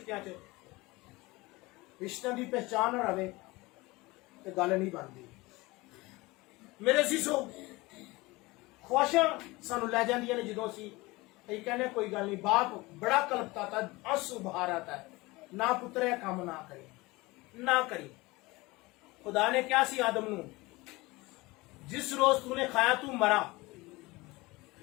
च, रिश्तों की पहचान ना रहे तो गल नहीं बनती। मेरे जीजो, ख्वाहिशां सानू लै जांदियां ने, जो असीं कहने कोई गल नहीं, बाप बड़ा कलपता था, आंसू बहार आता है, ना पुत्रे काम ना करी ना करी। खुदा ने क्या सी आदम नू, जिस रोज तूने खाया तू मरा,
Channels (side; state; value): right; quieter; 22.1 dB